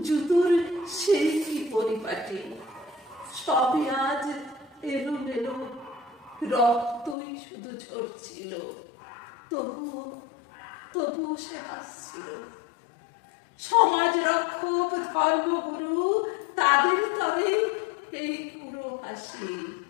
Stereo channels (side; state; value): right; drops out; at 7.2 s